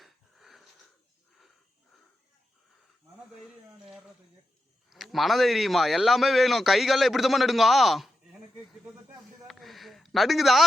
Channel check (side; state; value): both; normal; correlation 0.88